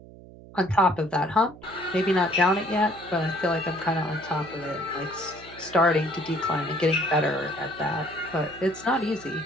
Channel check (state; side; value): noise; right; hum, 19 dB below the sound